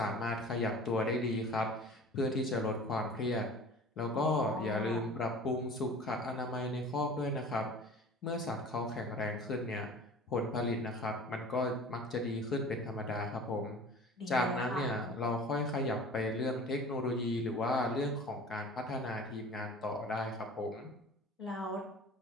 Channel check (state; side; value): normal; both; correlation 0.42